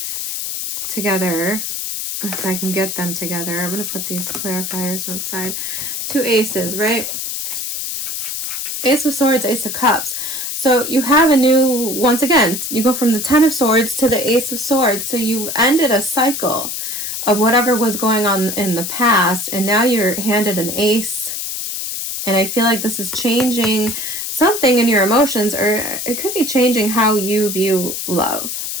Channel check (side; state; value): left; noise; hiss, 4 dB below the sound